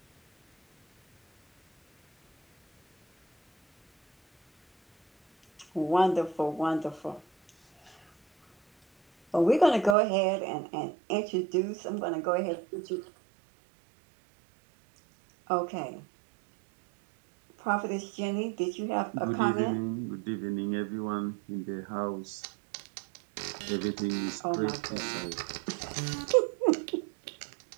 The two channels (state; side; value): drops out; left; at 10.0 s